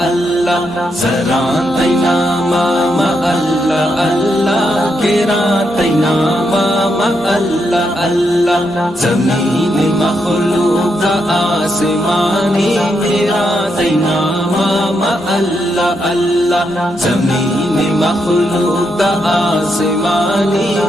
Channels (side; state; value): both; normal; correlation 0.81